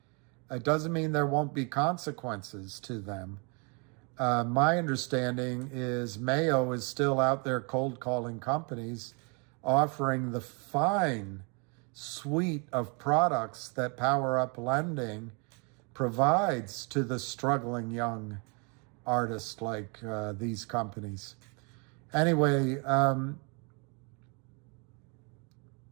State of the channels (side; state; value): left; quieter; 33.7 dB